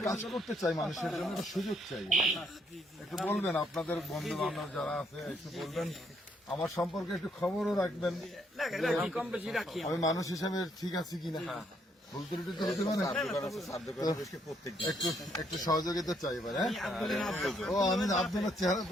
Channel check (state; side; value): normal; both; correlation 0.72